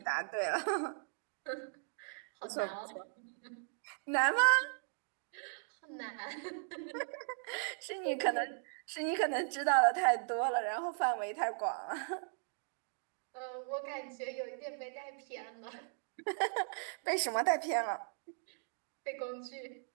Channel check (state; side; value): silent; left; digital silence